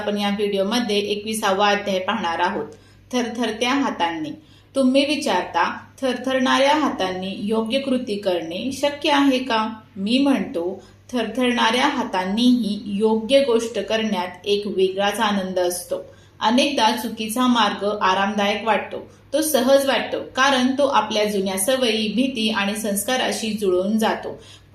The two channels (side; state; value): both; identical; correlation 1.00